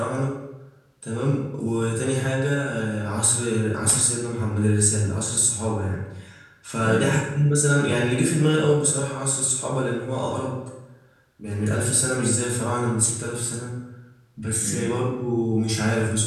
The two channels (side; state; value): both; identical; correlation 1.00